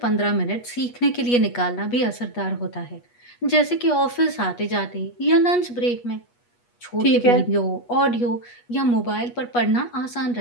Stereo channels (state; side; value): late; right; 8.3 ms